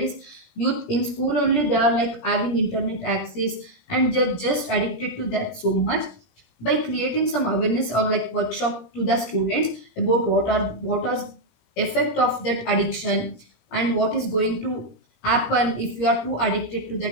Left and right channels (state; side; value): late; right; 17 ms